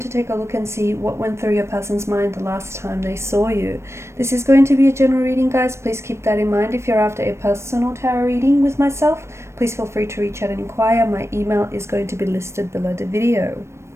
take a look and see what went through your person's mind the last time they saw you. This is going to be a general reading, guys. Please keep that in mind. If you're after a personal tarot reading with myself, please feel free to reach out and inquire. My email is going to be listed below the video.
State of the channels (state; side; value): late; left; 0.13 ms